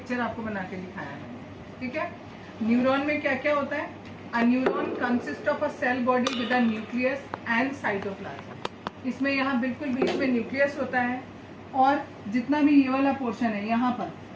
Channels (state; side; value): identical; both; correlation 1.00